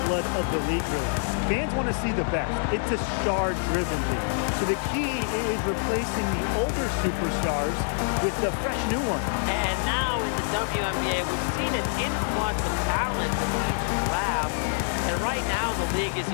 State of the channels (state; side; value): silent; right; digital silence